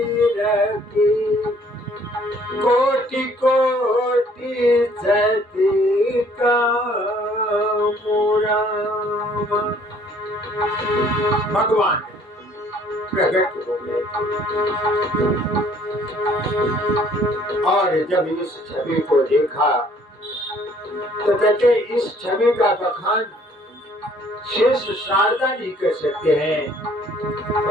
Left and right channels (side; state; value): both; normal; correlation 0.59